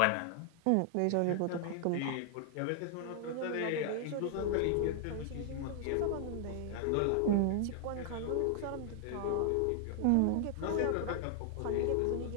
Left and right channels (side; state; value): both; different; correlation 0.00